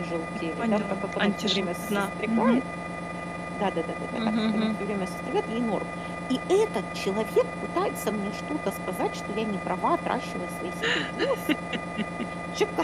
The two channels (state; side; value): identical; both; correlation 1.00